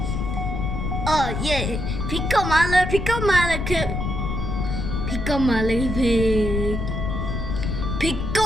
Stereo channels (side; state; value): left; noise; rumble, 2 dB below the sound